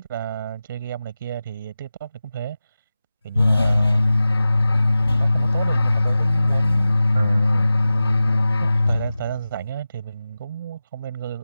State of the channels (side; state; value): both; inverted; correlation -0.94